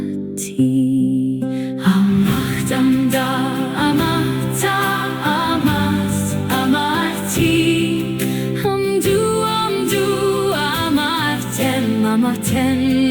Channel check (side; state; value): both; identical; correlation 1.00